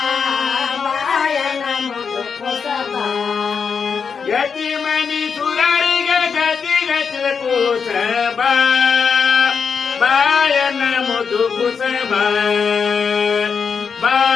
ಬಾಯನ ಮುದು ಕುಸಬ ಯತಿಮನಿ ಸುರರಿಗೆ ಗತಿ ಗತಿ ಕುಸಬ ಬಾಯನ ಮುದು ಕುಸಬ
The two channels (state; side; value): quieter; right; 6.0 dB